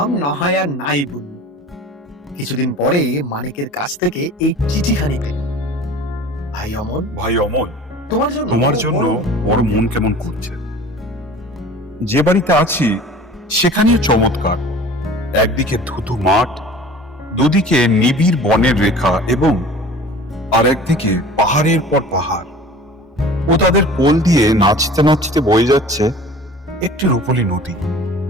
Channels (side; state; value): both; normal; correlation 0.43